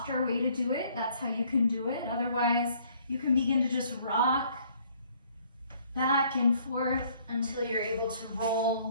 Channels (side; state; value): both; inverted; correlation -0.61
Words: way to do it, that's how you can do it. Otherwise, you can begin to just rock back and forth until you're able to roll